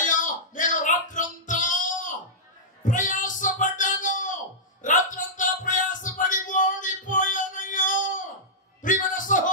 నేను రాత్రంతా ప్రయాసపడ్డాను, రాత్రంతా ప్రయాసపడి ఓడిపోయానయ్యా. ప్రియమైన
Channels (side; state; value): both; normal; correlation -0.13